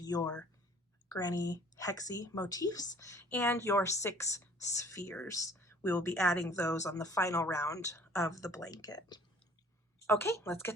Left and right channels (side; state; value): both; normal; correlation 0.53